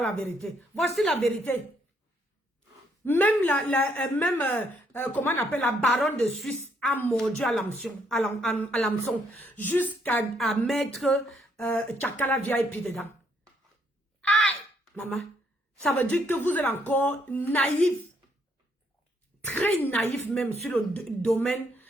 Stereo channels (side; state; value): both; normal; correlation 0.71